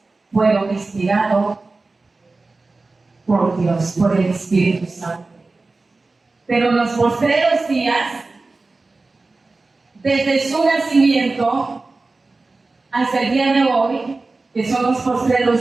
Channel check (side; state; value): left; quieter; 3.5 dB